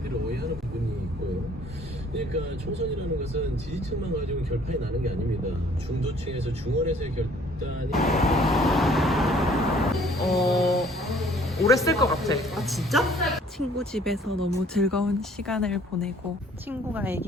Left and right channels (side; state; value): both; normal; correlation 0.57